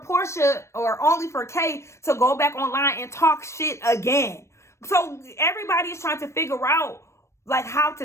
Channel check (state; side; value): late; right; 0.13 ms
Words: Porsha or only for Kay to go back online and talk shit again. So everybody is trying to figure out like how